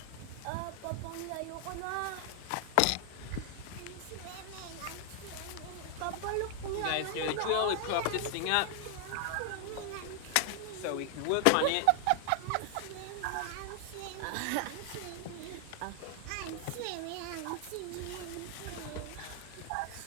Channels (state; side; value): different; both; correlation 0.00